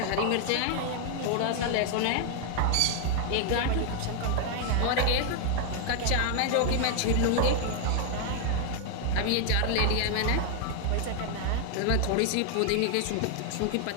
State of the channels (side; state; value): both; different; correlation 0.00